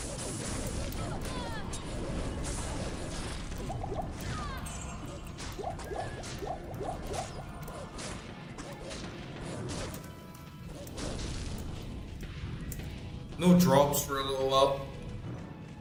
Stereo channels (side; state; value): both; identical; correlation 1.00